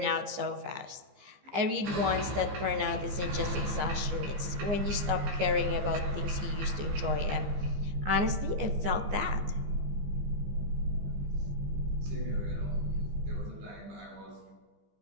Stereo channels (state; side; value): late; left; 15 ms